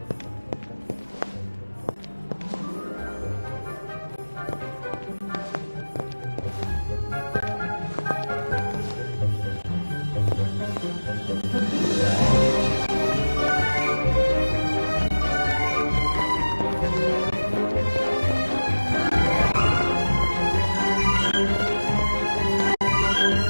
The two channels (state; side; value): inverted; both; correlation -1.00